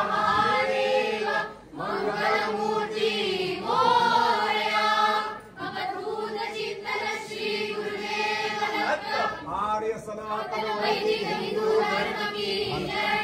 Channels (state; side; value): identical; both; correlation 1.00